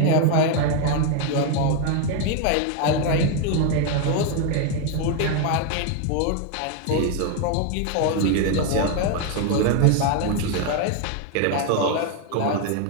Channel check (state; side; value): different; both; correlation 0.01